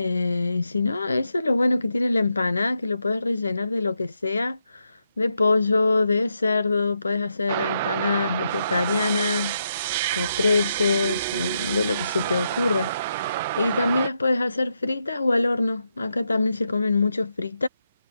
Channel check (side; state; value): both; inverted; correlation -0.82